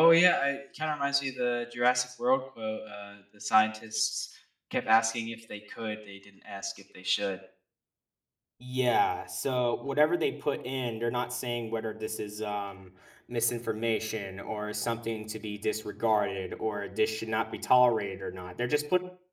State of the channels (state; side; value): identical; both; correlation 1.00